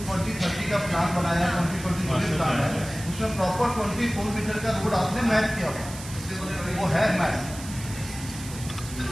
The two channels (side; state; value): right; noise; hiss, 13 dB below the sound